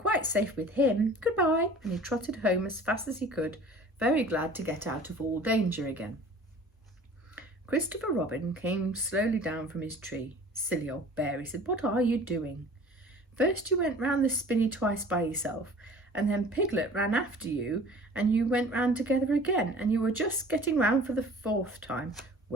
safe with him. Goodbye. And he trotted home as fast as he could, very glad to get out of all danger again. Christopher Robin came slowly down from his tree. Silly old bear, he said, what are you doing? First you went round the spinney twice by yourself, and then Piglet ran after you, and you went round together again, and you were just getting round for the 4th time.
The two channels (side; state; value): both; normal; correlation 0.46